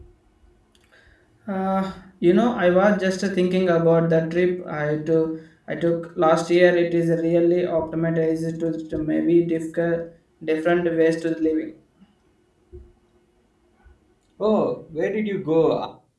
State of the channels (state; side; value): identical; both; correlation 1.00